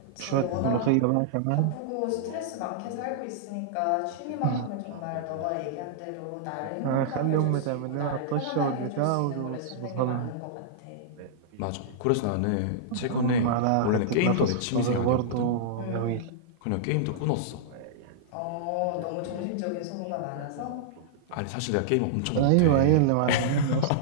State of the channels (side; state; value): both; different; correlation -0.02